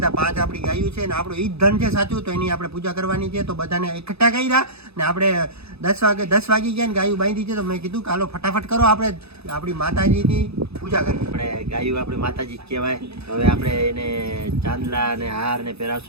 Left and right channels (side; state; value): left; late; 0.79 ms